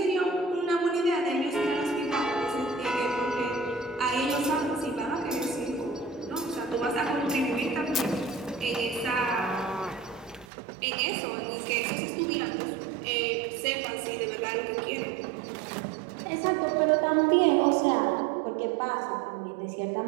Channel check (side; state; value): left; drops out; at 10.5 s